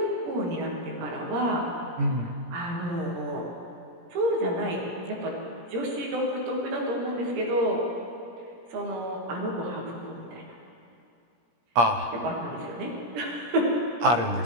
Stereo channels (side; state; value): left; late; 17 ms